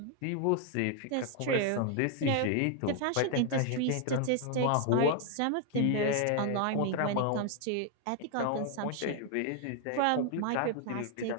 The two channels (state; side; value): different; both; correlation 0.00